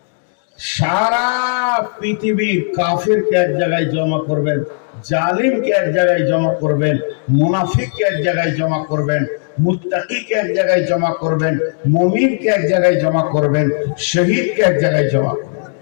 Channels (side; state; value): right; silent; 60 dB below the other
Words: সারা পৃথিবীর কাফিরকে এক জায়গায় জমা করবেন, জালিমকে এক জায়গায় জমা করবেন, মুনাফিককে এক জায়গায় জমা করবেন, মুত্তাকিকে এক জায়গায় জমা করবেন, মুমিনকে এক জায়গায় জমা করবেন, শহীদকে এক জায়গায় জমা করবেন।